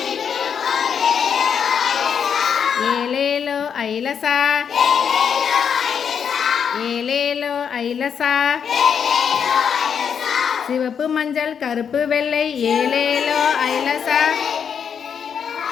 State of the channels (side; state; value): right; quieter; 7.3 dB